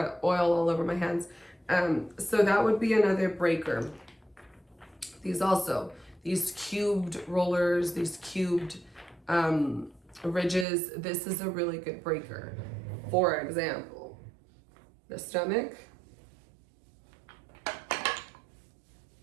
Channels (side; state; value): left; drops out; at 10.7 s